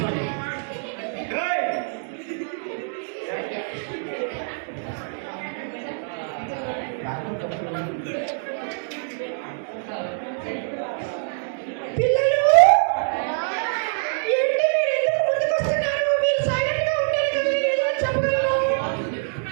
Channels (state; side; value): silent; left; digital silence